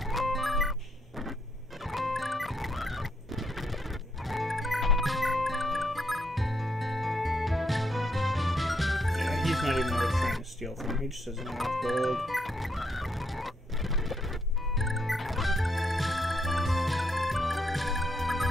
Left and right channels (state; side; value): normal; both; correlation 0.76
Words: He's not even worth trying to steal from him. He just doesn't have enough gold.